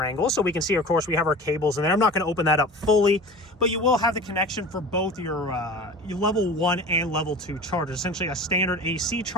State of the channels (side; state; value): both; normal; correlation 0.36